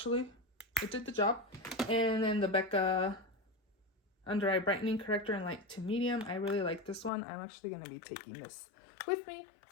It did the job. And then the Becca Under Eye Brightening Corrector in light to medium. I really like this one. I'm actually going to be taking this with me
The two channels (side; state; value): right; drops out; at 7.1 s